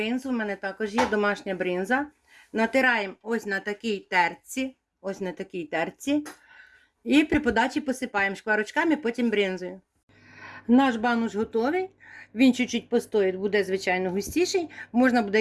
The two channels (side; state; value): both; identical; correlation 1.00